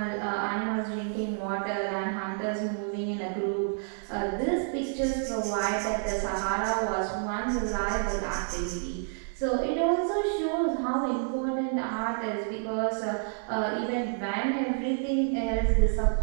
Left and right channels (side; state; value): left; silent; digital silence